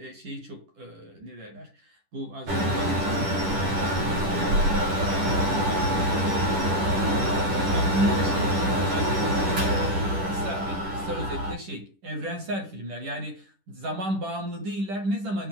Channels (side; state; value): left; late; 10 ms